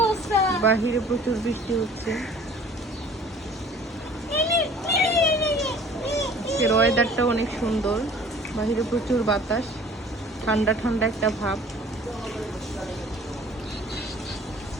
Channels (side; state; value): both; normal; correlation 0.49